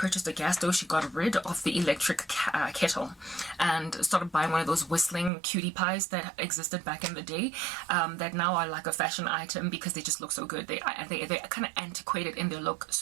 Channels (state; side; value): drops out; left; at 5.3 s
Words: a gas stove, she got rid of the electric kettle and started buying one of those whistling cutie pies that existed back in the day, that now are like a fashion item because they just look so good. They're kind of antiquated in their look,